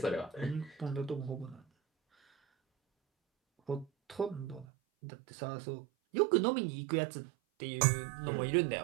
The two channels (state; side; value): drops out; left; at 4.7 s